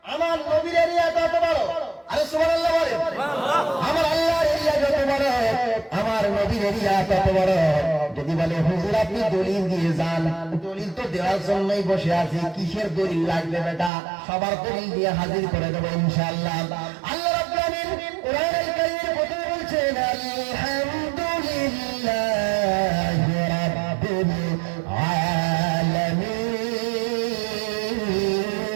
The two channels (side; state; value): left; drops out; at 13.9 s